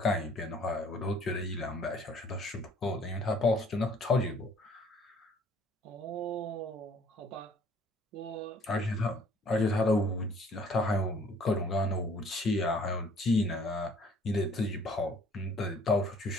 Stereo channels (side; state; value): both; normal; correlation 0.58